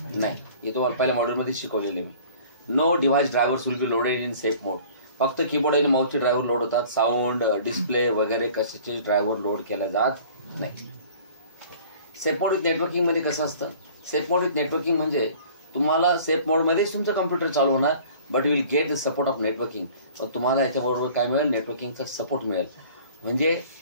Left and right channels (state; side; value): inverted; both; correlation -0.49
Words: नाही. हे तुम्हाला पहिल्या मॉड्यूलमध्ये शिकवलेले मी. No device drivers will be loaded in safe mode. फक्त कीबोर्ड आणि माऊसचे ड्रायव्हर लोड होतात. साऊंड डिस्प्ले वगैरे कशाचे ड्रायव्हर लोड केला जात नाही. सेफ मोड विथ नेटवर्किंग मध्ये कसं असतं? सेफ मोड विथ नेटवर्किंग म्हणजे तुम्हाला सेफ मोडमध्येच तुमचं कम्प्युटर चालू होणार but you will get the support of networking. पण तुम्हाला याच्याबरोबर काय मिळेल? नेटवर्किंगचा सपोर्ट मिळेल. म्हणजे